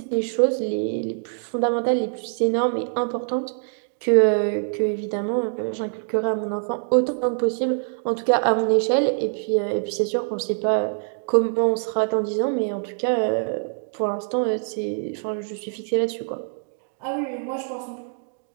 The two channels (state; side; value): silent; left; digital silence